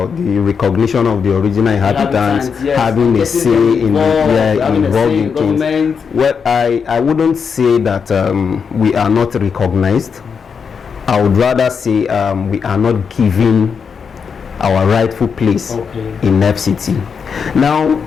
the recognition of the original inhabitants yes, having a say in involved in things. Well, I wouldn't say that we are not recognized. I would rather say we are not given our rightful place in FCT. Now,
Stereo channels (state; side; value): quieter; right; 6.2 dB